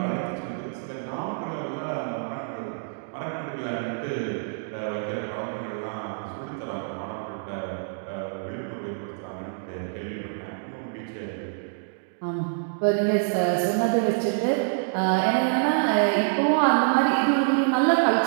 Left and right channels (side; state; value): left; silent; digital silence